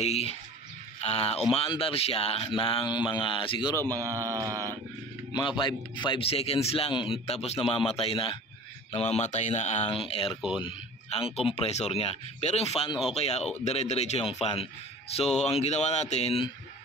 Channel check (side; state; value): both; normal; correlation 0.42